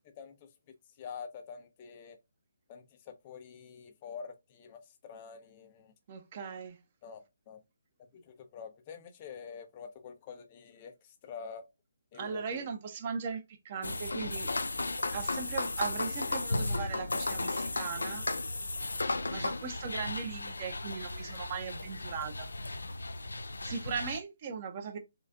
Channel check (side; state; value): both; inverted; correlation -0.80